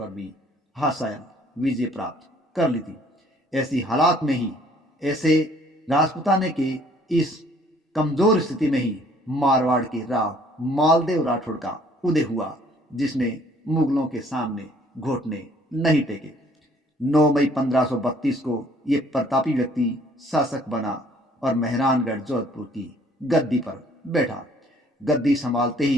भी हासायन विजय प्राप्त कर ली थी। ऐसी हालात में ही, ऐसे राजपुताने के इस कमजोर स्थिति में ही मारवाड़ के राव मालदेव राठौड़ का उदय हुआ, जिसने मुगलों के सामने घुटने नहीं टेके। 9 मई 1532 को ये प्रतापी व्यक्ति शासक बना और मेहरानगढ़ जोधपुर की गद्दी पर बैठा। गद्दी संभालते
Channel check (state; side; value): normal; both; correlation 0.59